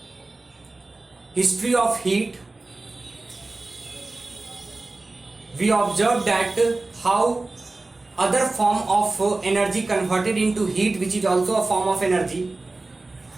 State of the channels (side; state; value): left; quieter; 3.2 dB